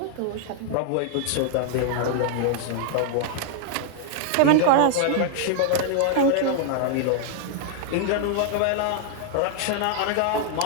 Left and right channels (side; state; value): both; different; correlation 0.00